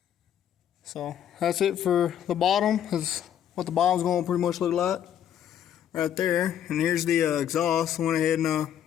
So that's it for the bottom. That's what the bottom's going to pretty much look like. Right there. And here's the exhaust. Went ahead and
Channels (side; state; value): right; quieter; 9.9 dB